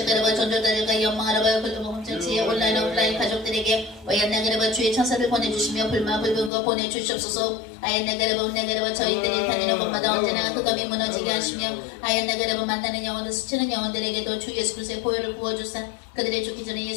전도자들과 연망하라바 글로범전체의 온라인 오프라인 가족들에게 와얀나그르바 주의 천사를 보내주시며 불마불분과 보내주시옵소서. 아얀나그르바 저희들이 다니는 곳마다 언제나 흑암이 무너지게 하시며 아얀나그르바 만나는 영혼들 스치는 영혼들에게도 주 예수 그리스도의 보혈을 부어주사 그들의 죽기 전에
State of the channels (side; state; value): right; drops out; at 6.5 s